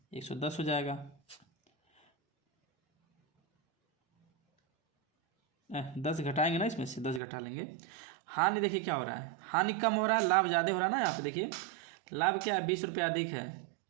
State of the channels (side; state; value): left; drops out; at 7.2 s